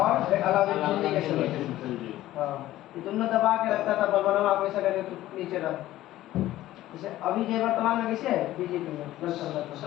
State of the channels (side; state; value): right; quieter; 14.9 dB